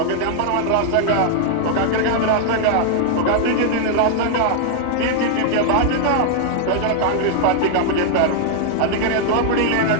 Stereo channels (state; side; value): different; both; correlation -0.01